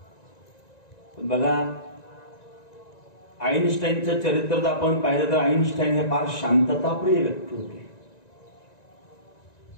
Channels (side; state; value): right; late; 1.9 ms